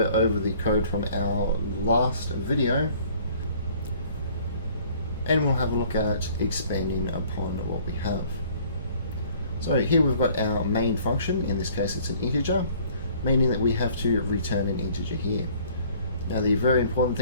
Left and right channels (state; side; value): inverted; both; correlation -0.55